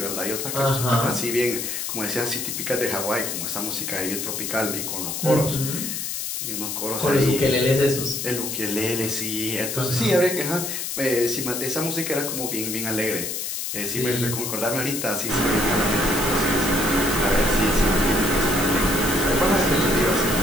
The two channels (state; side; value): noise; left; hiss, 4 dB below the sound